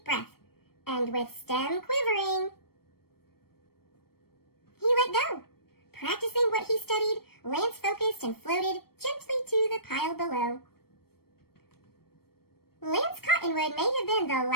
breath, and with stem quivering, he let go. Practicing what he studied, Lance focused and floated gently to the pile below. Lance Cottonwood may have been the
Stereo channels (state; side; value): late; right; 0.94 ms